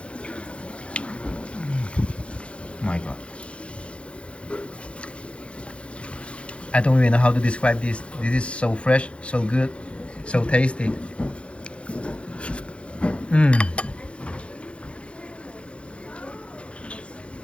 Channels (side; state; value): right; late; 0.059 ms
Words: My God. I don't even know how to describe this. This is so fresh, so good, so tasty.